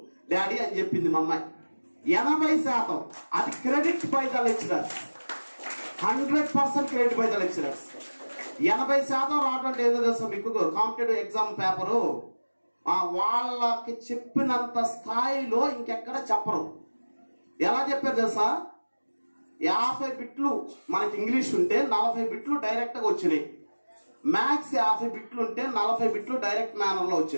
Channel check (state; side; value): inverted; both; correlation -1.00